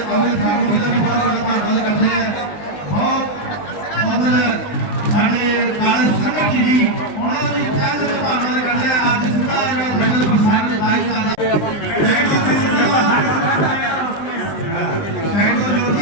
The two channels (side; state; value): right; late; 19 ms